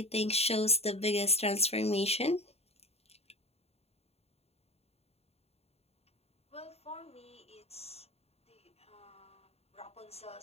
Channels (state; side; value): late; right; 0.30 ms